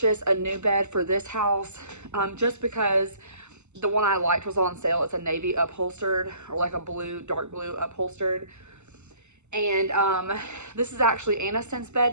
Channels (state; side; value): late; left; 0.83 ms